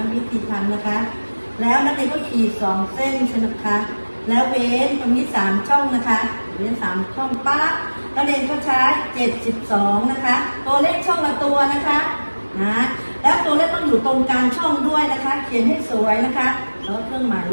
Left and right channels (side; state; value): both; inverted; correlation -1.00